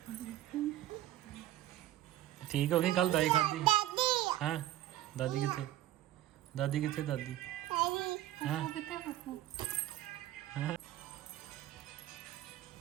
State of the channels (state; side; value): quieter; left; 13.9 dB